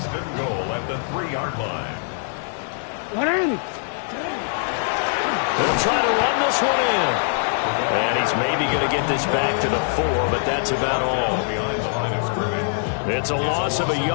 and goal at the 3-yard line. They'll try to run this one in. And he's maybe going to get this back to the 4, but that's about all. It's a loss of a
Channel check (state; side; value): silent; right; 56 dB below the other